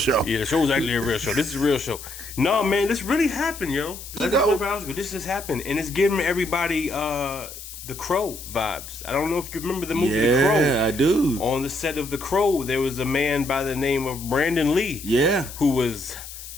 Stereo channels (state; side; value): noise; left; hiss, 13 dB below the sound